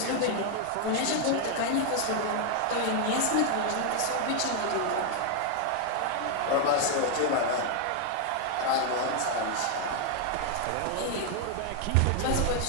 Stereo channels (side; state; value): both; different; correlation 0.00